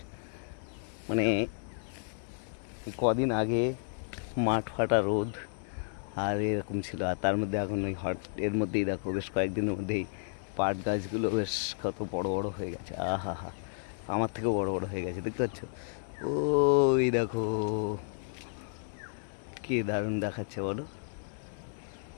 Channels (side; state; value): right; silent; 56 dB below the other